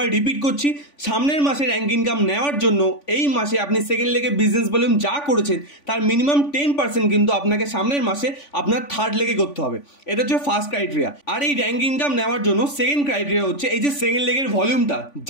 রিপিট করছি, সামনের মাসে র্যাঙ্ক ইনকাম নেওয়ার জন্য এই মাসে আপনি সেকেন্ড লেগে বিজনেস ভলিউম যা করেছেন তার মিনিমাম 10% কিন্তু আপনাকে সামনের মাসে আপনার থার্ড লেগে করতে হবে। এটা হচ্ছে ফার্স্ট ক্রাইটেরিয়া। আর এই র্যাঙ্ক ইনকাম নেওয়ার জন্য সেকেন্ড ক্রাইটেরিয়া হচ্ছে এই যে সেকেন্ড লেগের ভলিউমটা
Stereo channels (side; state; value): right; late; 3.5 ms